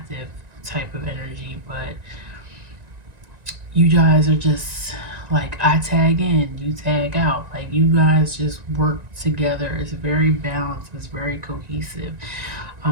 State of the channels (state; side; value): late; left; 1.9 ms